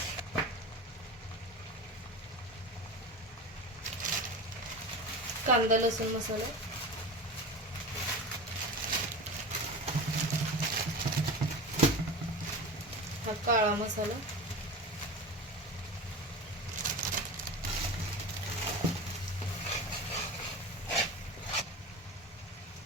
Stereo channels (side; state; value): both; normal; correlation 0.30